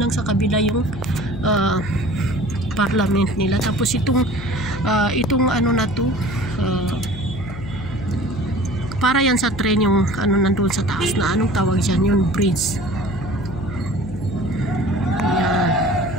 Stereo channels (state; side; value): noise; left; hum, 12 dB below the sound